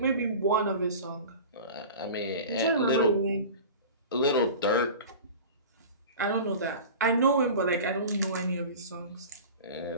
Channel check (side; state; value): both; inverted; correlation -0.36